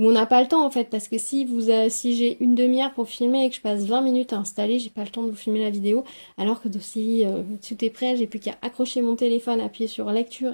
n'a pas le temps en fait. Parce que si j'ai une demi-heure pour filmer et que je passe 20 minutes à installer, j'ai pas le temps de vous filmer la vidéo. Alors que si tout est prêt, j'ai plus qu'à accrocher mon téléphone, appuyer sur lecture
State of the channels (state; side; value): inverted; both; correlation -1.00